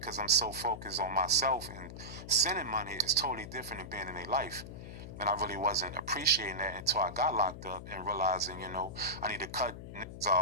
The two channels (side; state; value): left; noise; hum, 11 dB below the sound